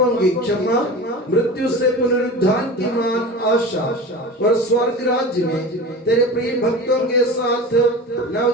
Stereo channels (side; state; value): both; normal; correlation 0.32